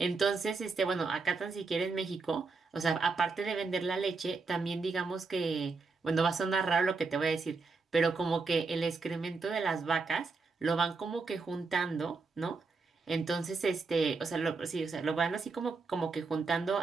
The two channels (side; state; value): left; quieter; 4.3 dB